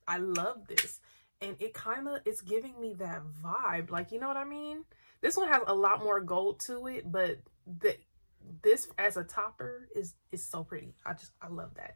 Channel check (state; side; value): inverted; both; correlation -1.00